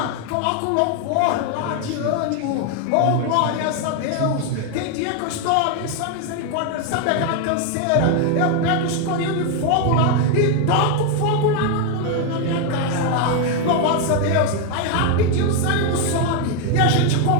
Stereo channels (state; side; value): different; both; correlation 0.01